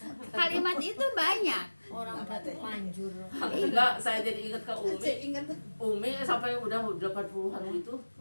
kalimat itu banyak. Orang udah terlanjur. Enggak, saya jadi ingat ke Umi. Ingat Umi sampai udah 80-an itu.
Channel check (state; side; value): inverted; both; correlation -1.00